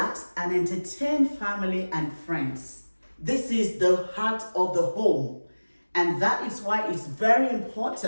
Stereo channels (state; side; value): inverted; both; correlation -1.00